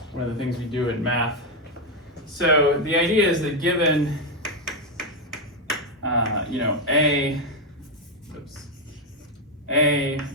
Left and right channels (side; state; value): both; normal; correlation 0.05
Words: one of the things we do in math. So the idea is that given, you know, A,